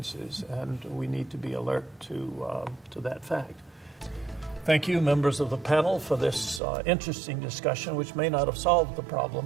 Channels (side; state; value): left; drops out; at 6.6 s